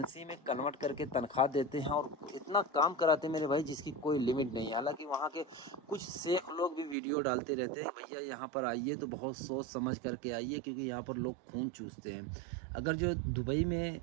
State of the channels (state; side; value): drops out; left; at 7.0 s